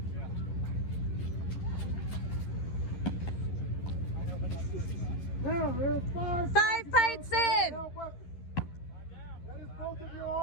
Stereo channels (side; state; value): right; late; 11 ms